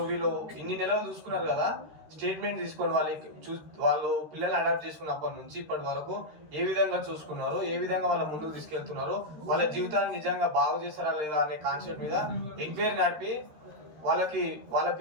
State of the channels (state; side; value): late; left; 13 ms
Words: వీళ్ళు ఇన్ని నెలలు చూసుకున్నారు కదా, స్టేట్మెంట్ తీసుకొని వాళ్ళు పిల్లల్ని అడాప్ట్ చేసుకున్నప్పటి నుంచి ఇప్పటి వరకు ఏ విధంగా చూసుకున్నారు, ఏ విధంగా వాళ్ళ ముందుకు తీసుకెళ్తున్నారు, వాళ్ళ జీవితాన్ని నిజంగా బాగు చేస్తారా లేదా అనే కాన్సెప్ట్ మీద ఎంక్వైరీ నడిపి వాళ్ళ